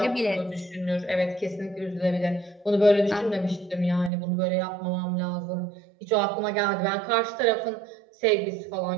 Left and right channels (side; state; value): left; drops out; at 4.1 s